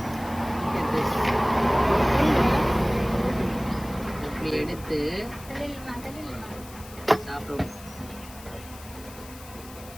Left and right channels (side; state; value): left; noise; hiss, 18 dB below the sound